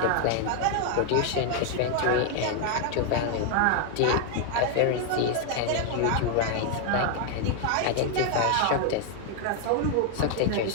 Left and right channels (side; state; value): both; different; correlation 0.00